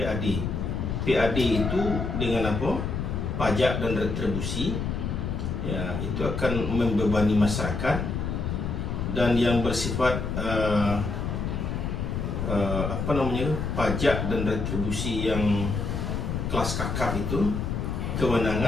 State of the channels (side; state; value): left; noise; rumble, 2 dB below the sound